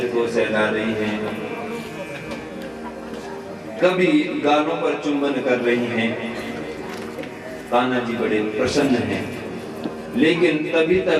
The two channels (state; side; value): identical; both; correlation 1.00